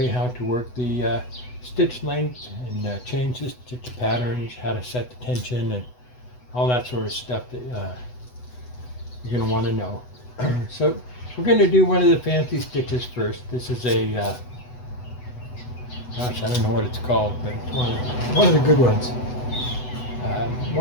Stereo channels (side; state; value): right; late; 8.0 ms